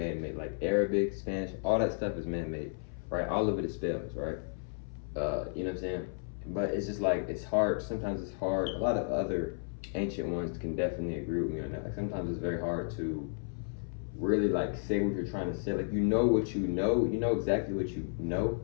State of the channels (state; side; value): silent; right; 56 dB below the other